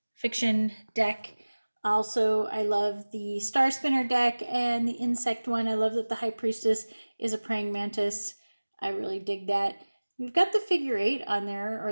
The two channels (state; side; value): inverted; both; correlation -1.00